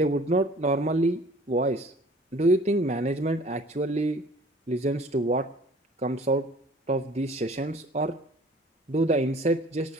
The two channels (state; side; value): normal; both; correlation 0.50